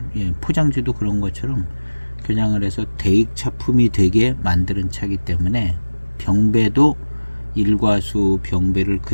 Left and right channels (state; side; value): inverted; both; correlation -1.00